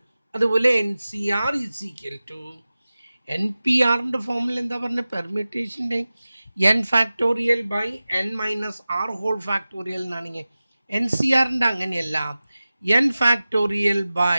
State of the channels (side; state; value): both; inverted; correlation -0.96